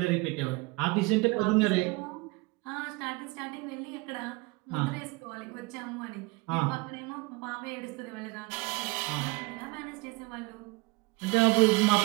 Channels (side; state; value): left; quieter; 24.9 dB